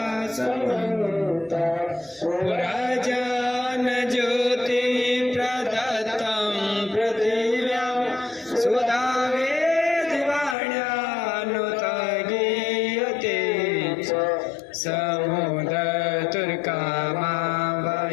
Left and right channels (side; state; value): right; drops out; at 10.6 s